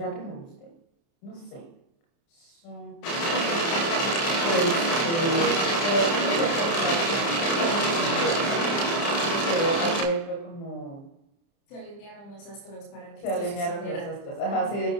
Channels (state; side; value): late; right; 30 ms